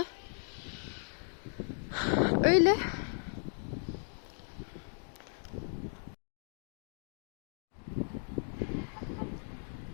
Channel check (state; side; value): silent; right; 54 dB below the other